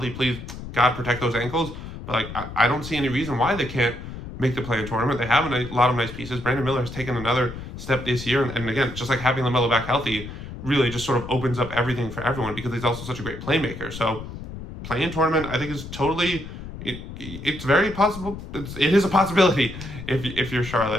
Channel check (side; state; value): left; noise; rumble, 11 dB below the sound